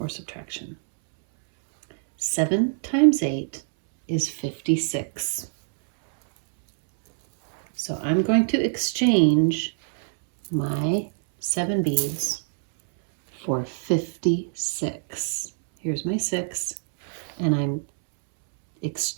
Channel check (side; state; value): left; silent; 62 dB below the other